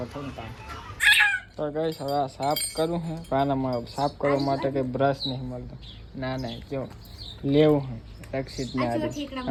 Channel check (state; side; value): identical; both; correlation 1.00